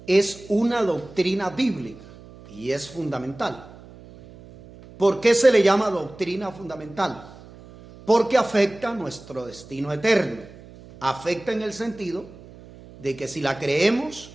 es una doctrina bíblica y es fundamental. ¿Por qué se le llama doctrina fundamental? Porque afecta nuestro destino eterno. Afecta en el sentido de que si la creemos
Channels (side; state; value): right; noise; hum, 20 dB below the sound